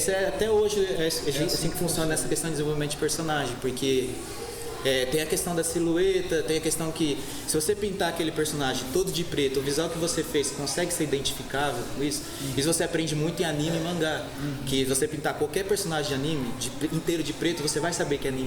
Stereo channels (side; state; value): left; noise; hum, 27 dB below the sound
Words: até hoje é assim que funciona essa questão de desenvolvimento de personagem, porque... tem a questão da silhueta, tem a questão que se você pintar aquele personagem todo de preto, o visual que você fez consegue ser identificável com isso. Isso você aprende muito em anime e mangá. Que você pintar qualquer personagem de anime inteiro de preto, você vai saber que